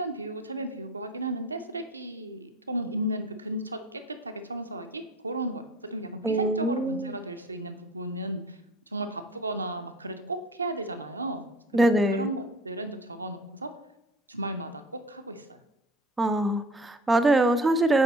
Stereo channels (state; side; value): normal; both; correlation 0.45